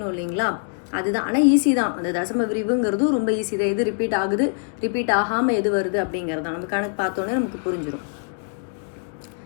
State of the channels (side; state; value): right; silent; 58 dB below the other